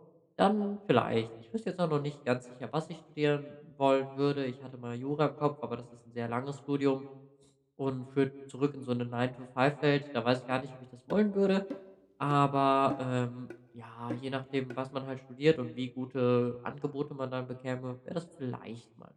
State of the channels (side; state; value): both; identical; correlation 1.00